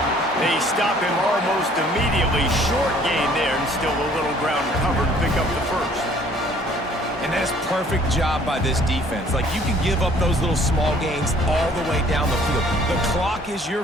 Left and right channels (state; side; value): normal; both; correlation 0.57